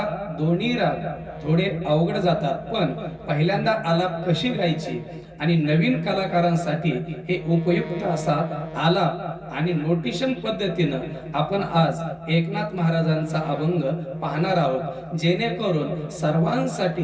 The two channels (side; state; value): both; identical; correlation 1.00